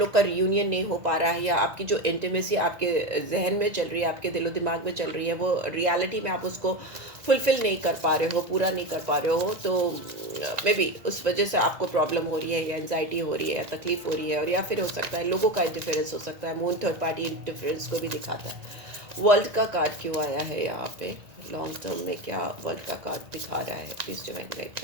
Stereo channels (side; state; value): left; late; 1.9 ms